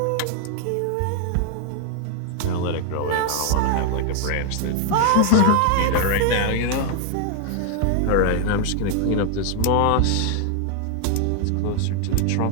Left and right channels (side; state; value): both; different; correlation 0.00